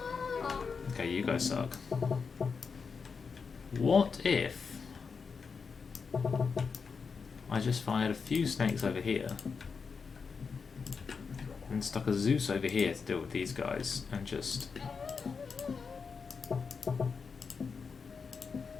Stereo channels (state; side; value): quieter; right; 5.4 dB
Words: Okay, you guys suck. What if I just fired a few snakes over here and stuck a Zeus over here to deal with these guys and just